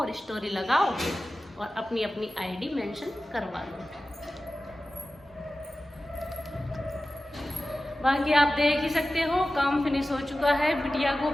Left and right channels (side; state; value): both; normal; correlation 0.95